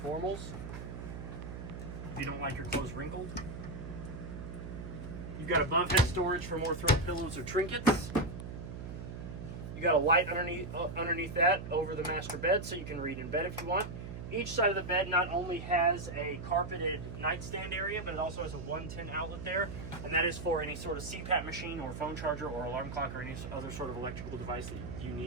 if you don't like your clothes wrinkled. You've got above head storage for more throw pillows or trinkets. You got a light underneath that over the master bed, so you can read in bed if you want. Each side of the bed not only has a carpeted nightstand area, but it also has a 110 outlet there, and that is for any sort of CPAP machine or phone charger or alarm clock or any other sort of electrical device that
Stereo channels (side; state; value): right; noise; hum, 8 dB below the sound